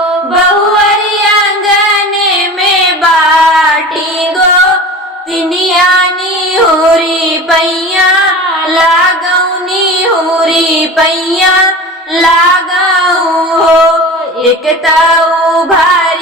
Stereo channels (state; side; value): normal; both; correlation 0.34